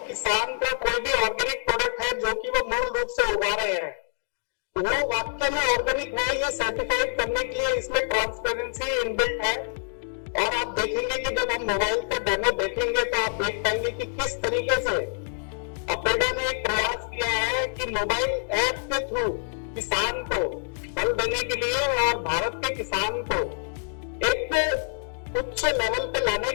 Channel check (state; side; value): silent; right; digital silence